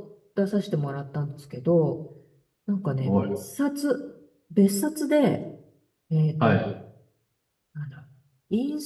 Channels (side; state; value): both; identical; correlation 1.00